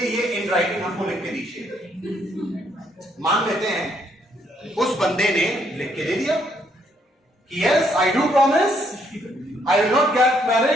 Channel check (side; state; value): both; normal; correlation 0.71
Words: इन राइटिंग हमको लिख के दीजिए। मान लेते हैं उस बंदे ने लिख के दे दिया कि yes I do promise I will not get